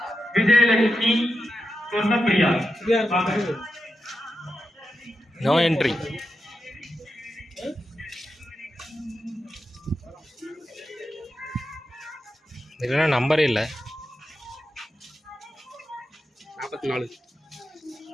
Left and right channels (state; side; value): normal; both; correlation 0.88